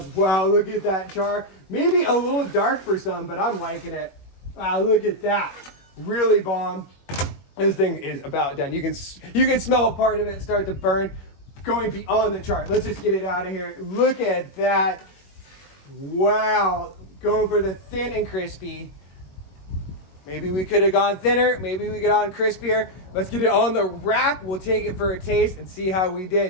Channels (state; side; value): late; right; 21 ms